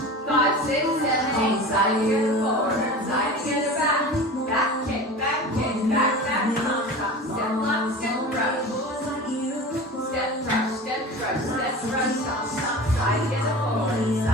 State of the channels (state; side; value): normal; both; correlation 0.34